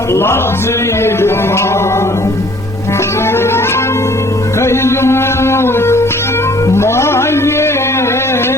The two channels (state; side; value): normal; both; correlation 0.56